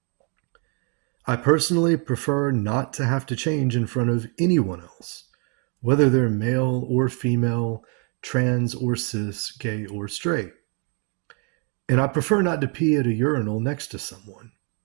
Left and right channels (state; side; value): quieter; left; 37.2 dB